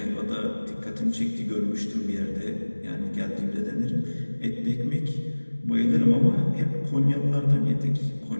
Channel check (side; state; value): both; inverted; correlation -1.00